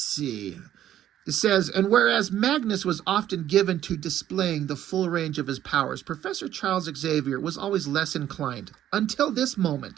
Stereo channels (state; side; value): quieter; left; 11.7 dB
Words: It says, and whereas Magnus was often given to displaying the full range of his powers, Professor Charles Xavier was always less inclined. Until this